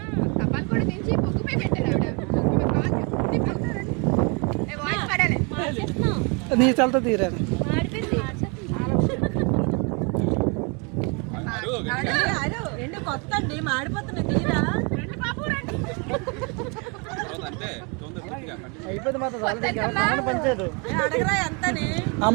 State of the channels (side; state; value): left; quieter; 32.9 dB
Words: నీ చల్తో తీరాను. కొత్త అండి మాడిపోతున్నాయి తీరా అయిపోయింది మాత్రం పంచారు. అడగరా ఎంతని ఆ